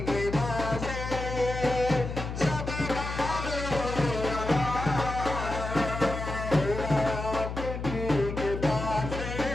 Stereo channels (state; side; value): noise; left; hum, 6 dB below the sound